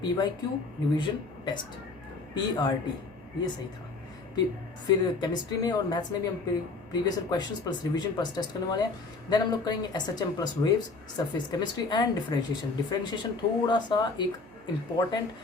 PYQ revision test, PRT, ये सही था। फिर केमिस्ट्री में और मैथ्स में भी हम previous questions plus revision plus test करने वाले हैं। देन हम लोग करेंगे SHM plus waves, surface chemistry and differentiation. Differentiation थोड़ा सा एक इम्पॉर्टेंट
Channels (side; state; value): right; quieter; 3.8 dB